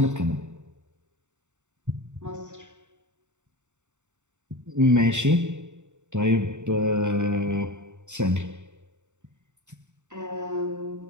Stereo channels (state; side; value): late; left; 0.84 ms